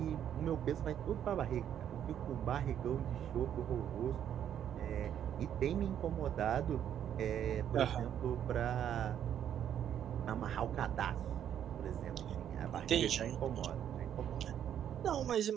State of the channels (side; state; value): left; quieter; 9.7 dB